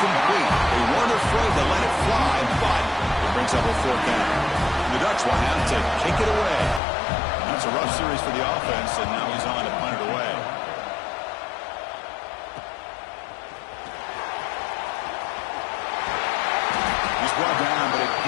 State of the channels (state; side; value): drops out; right; at 6.8 s